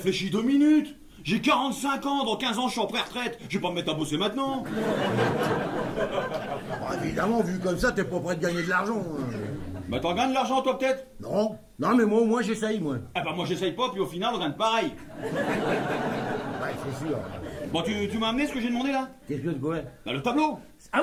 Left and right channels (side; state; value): both; identical; correlation 1.00